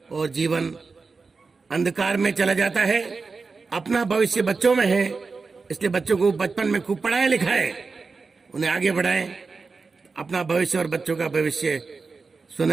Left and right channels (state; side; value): quieter; left; 4.4 dB